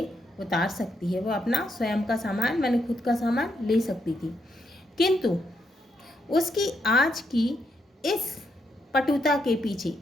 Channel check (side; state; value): both; normal; correlation 0.79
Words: उतार सकती है। वो अपना स्वयं का सामान, मैंने खुद का सामान ले सकती थी। किंतु उसकी आज की इस पटुता के पीछे,